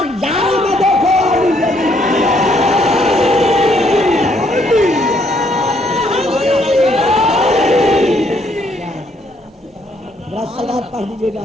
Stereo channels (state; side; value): normal; both; correlation 0.69